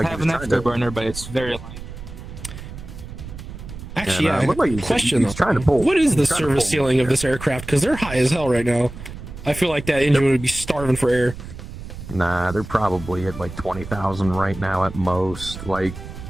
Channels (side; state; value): right; noise; rumble, 12 dB below the sound